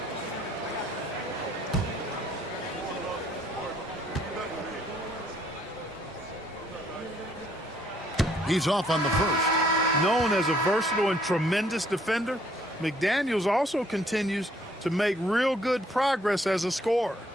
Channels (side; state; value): both; normal; correlation 0.65